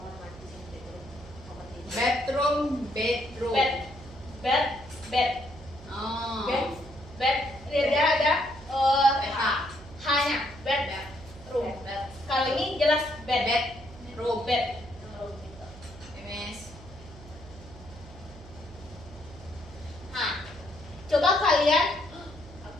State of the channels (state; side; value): noise; right; hum, 17 dB below the sound